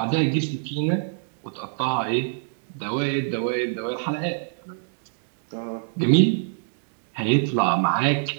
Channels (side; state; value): left; silent; digital silence